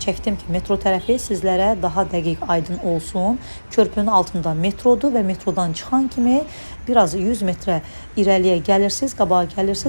çəkdim ki, metro tərəfi sizlərə daha dəqiq aydın olsun. Körpünün altında metrodur və metrodan çıxan kimi biraz 100 metrə irəliyə gəlirsiniz, qabağa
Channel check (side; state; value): both; inverted; correlation -1.00